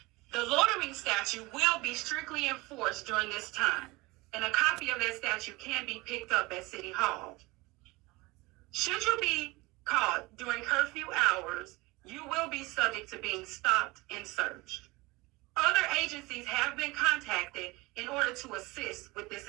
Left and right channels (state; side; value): quieter; left; 22.8 dB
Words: The loitering statute will be strictly enforced during this time, and a copy of that statute can be picked up at City Hall. Should you be caught during curfew hours, you will be subject to being stopped and searched. Other agencies have been contacted in order to assist with this